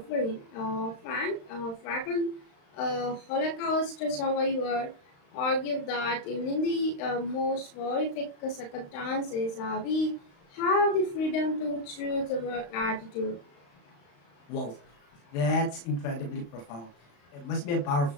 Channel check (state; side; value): late; right; 35 ms